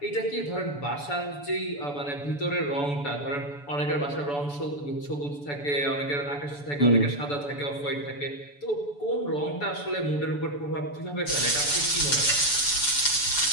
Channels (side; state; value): right; late; 6.9 ms